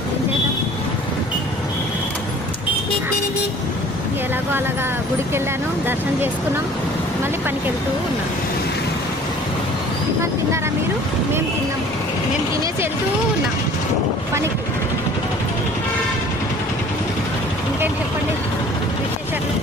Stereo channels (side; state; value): left; noise; rumble, 23 dB below the sound